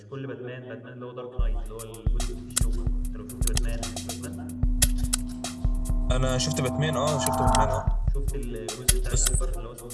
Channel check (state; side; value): identical; both; correlation 1.00